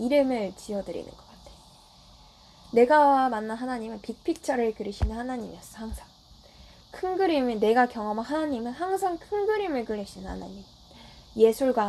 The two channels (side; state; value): both; identical; correlation 1.00